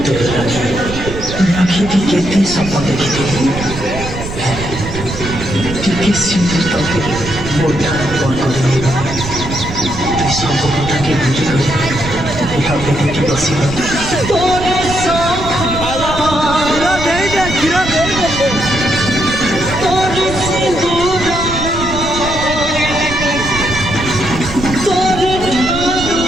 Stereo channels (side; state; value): right; noise; rumble, 8 dB below the sound